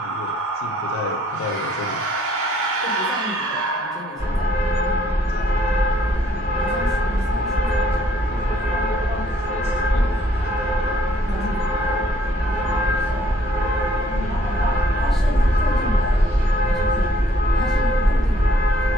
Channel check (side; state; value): both; normal; correlation 0.63